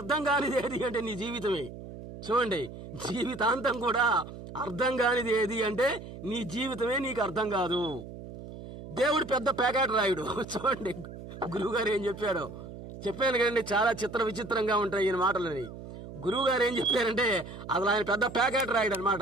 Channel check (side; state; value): right; noise; hum, 13 dB below the sound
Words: కానిది ఏది అంటే నీ జీవితమే. చూడండి, జీవితాంతం కూడా అర్థం కానిది ఏది అంటే నీ జీవితమే నీకు అర్థం కాదు. దేవుడు పెద్ద ప్యాకెట్ రాయుడు. చూడండి గురువు గారు ఏం చెప్పాడో చెప్పాను కదండి, చాలా చిత్ర విచిత్రంగా ఉంటాయి ఈయన మాటలని. గురువు గారు ఏం చెప్పారంటే అసలు ఆయన పెద్ద ప్యాకెట్ రాయుడు అనమాట.